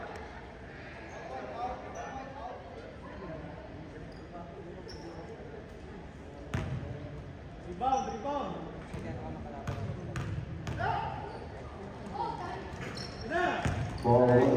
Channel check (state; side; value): identical; both; correlation 1.00